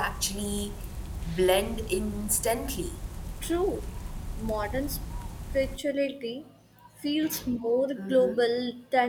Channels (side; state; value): both; identical; correlation 1.00